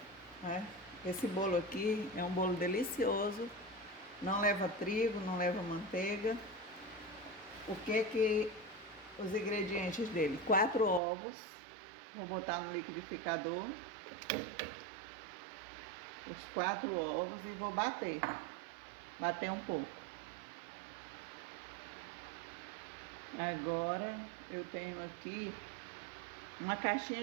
né? Esse bolo aqui é um bolo delicioso, não leva trigo, não leva manteiga. Os ingredientes dele? 4 ovos, vou botar no liquidificador, os 4 ovos e vou bater um pouco. Agora eu tenho aqui uma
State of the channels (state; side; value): drops out; left; at 11.0 s